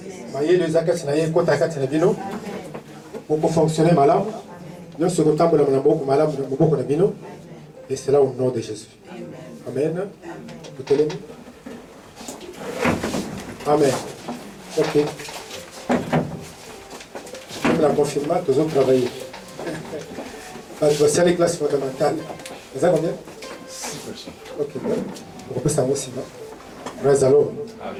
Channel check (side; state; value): both; identical; correlation 1.00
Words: Maye le zakati na ye kota kati na bino. Pour fonctionner malade. Nous sommes contents de la beaucoup malade de beaucoup de bino. Et c'est là au nom de Jésus. Amen. Vous te l'aimez? Amen. Ok. Comme la confirmation, nous avons travaillé. C'est les classes fondamentales. Vous avez combien? 6 personnes. Ok. On peut savoir aussi. Alors.